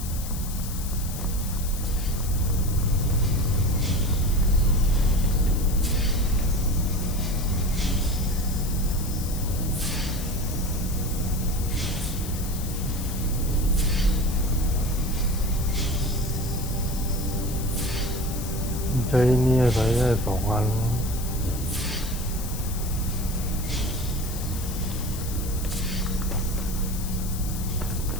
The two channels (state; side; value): noise; left; hiss, 10 dB below the sound